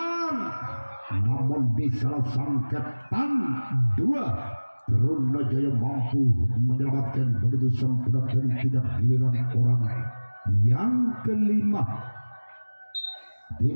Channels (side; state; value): both; inverted; correlation -1.00